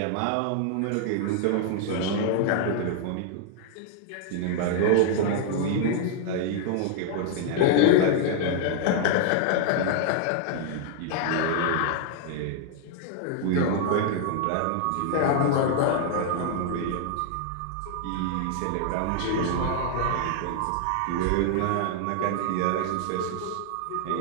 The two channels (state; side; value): different; both; correlation 0.00